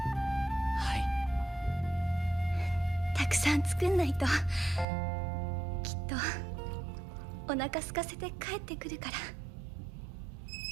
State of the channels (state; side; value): drops out; left; at 4.9 s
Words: い。たくさん作んないときっとお腹空かせて帰ってくるから。